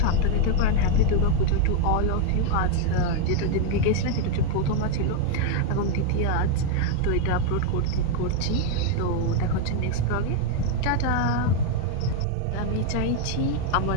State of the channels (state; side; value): different; both; correlation 0.00